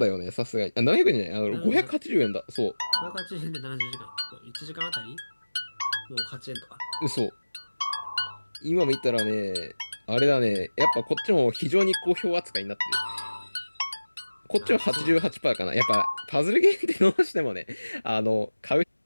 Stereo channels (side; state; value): both; inverted; correlation -1.00